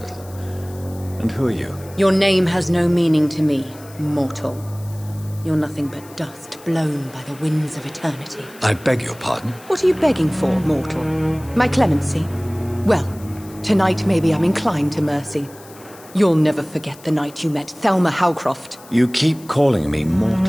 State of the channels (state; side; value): noise; left; hiss, 22 dB below the sound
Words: And who are you? Your name has no meaning to me, mortal. You're nothing but dust blown by the winds of eternity. I beg your pardon? What are you begging for, mortal? My clemency? Well, tonight maybe I'm inclined to mercy. You'll never forget the night you met Thelma Howcroft. You keep calling me